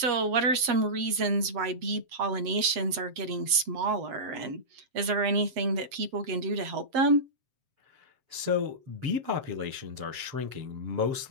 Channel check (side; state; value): left; late; 7.6 ms